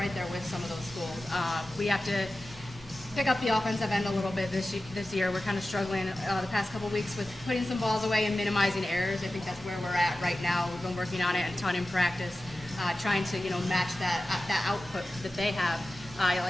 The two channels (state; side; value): normal; both; correlation 0.94